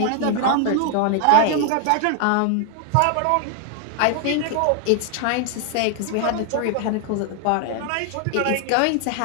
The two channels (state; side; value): different; both; correlation 0.00